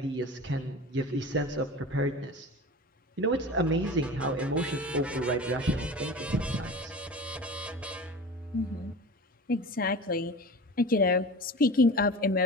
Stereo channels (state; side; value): normal; both; correlation 0.34